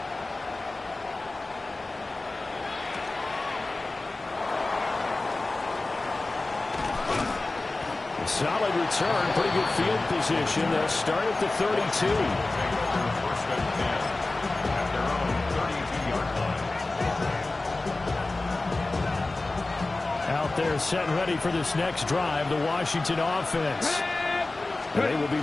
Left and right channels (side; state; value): right; quieter; 3.1 dB